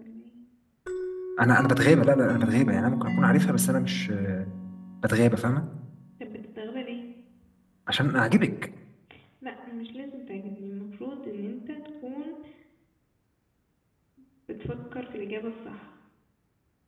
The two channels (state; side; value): identical; both; correlation 1.00